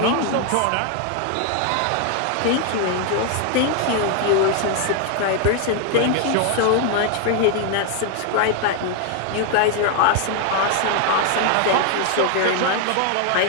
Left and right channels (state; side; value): different; both; correlation 0.01